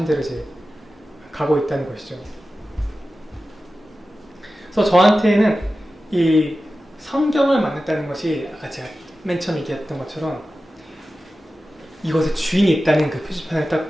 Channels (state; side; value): normal; both; correlation 0.94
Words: 대로 이제 가고 있다는 것이죠. 그래서 저한테는 이 성경을 만났다는 것이 아까 제가 맨 처음 얘기했던 것처럼 이것에 주인이 있다는 그 표지판을